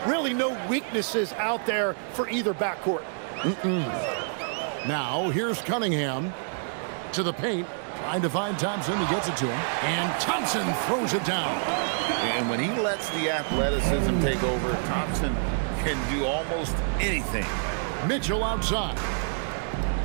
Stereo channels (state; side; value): silent; left; digital silence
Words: Really no weaknesses out there for either backcourt. Now, here's Cunningham to the paint, trying to find Thompson. He gets it to him, and Thompson throws it down. And when he lets the athleticism take over, Thompson can do almost anything. Mitchell outside.